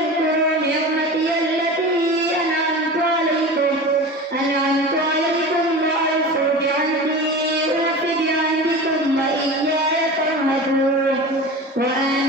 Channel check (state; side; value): normal; both; correlation 0.32